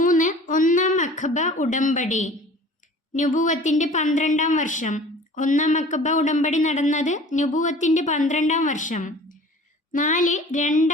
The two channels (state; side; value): normal; both; correlation 0.45